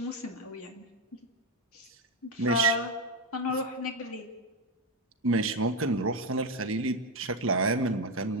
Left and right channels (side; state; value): both; normal; correlation 0.09